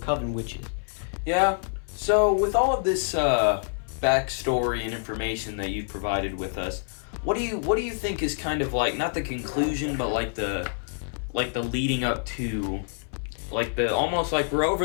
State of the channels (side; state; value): right; silent; 59 dB below the other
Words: Coven Witches. Yeah. So with all of this backstory and information that you've provided with us, what do you think is kind of like, not the conclusion, but like the leading up to, like the, almost like we're